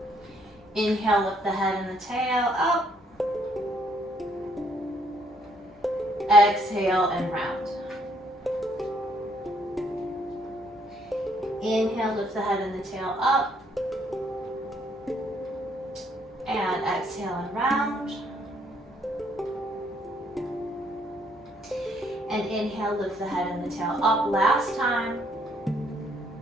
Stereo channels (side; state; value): both; normal; correlation 0.68